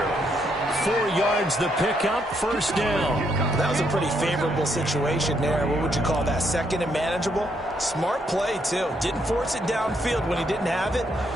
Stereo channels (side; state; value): both; normal; correlation 0.74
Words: 4 yards the pickup, first down. That was a pretty favorable situation there. What would you call that? 2nd and manageable? Smart play, too. Didn't force it downfield when he didn't have it.